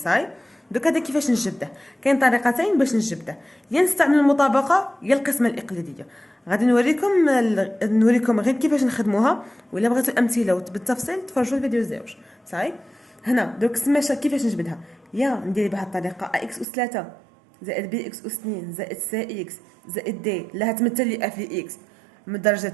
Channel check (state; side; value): drops out; left; at 16.7 s